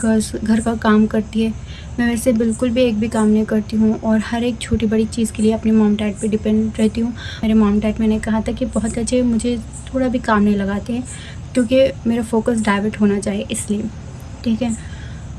घर का काम करती है, मैं वैसे बिल्कुल भी एक भी काम नहीं करती हूँ, और हर एक छोटी बड़ी चीज़ के लिए अपने मॉम डैड पे डिपेंड रहती हूँ। मेरे मॉम डैड, मैंने कहा था कि बहुत अच्छे, मुझे थोड़ा भी काम नहीं लगाते हैं, क्योंकि मेरा फोकस डाइवर्ट होना चाहिए इसलिए, ठीक है।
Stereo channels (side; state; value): both; identical; correlation 1.00